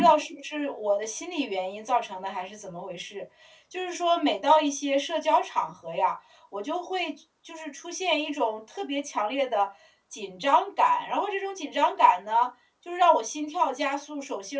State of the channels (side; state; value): both; identical; correlation 1.00